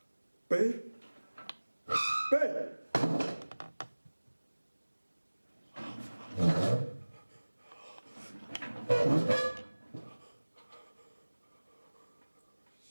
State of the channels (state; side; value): inverted; both; correlation -1.00